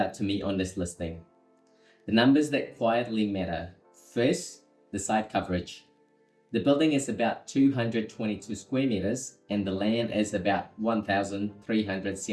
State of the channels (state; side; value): identical; both; correlation 1.00